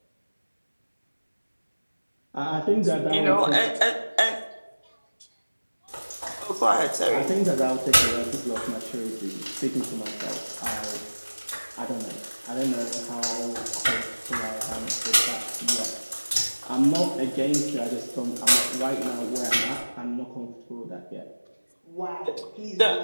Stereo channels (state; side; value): inverted; both; correlation -1.00